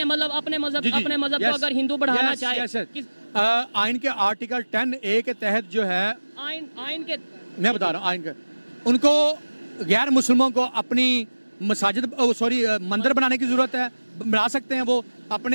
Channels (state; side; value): inverted; both; correlation -1.00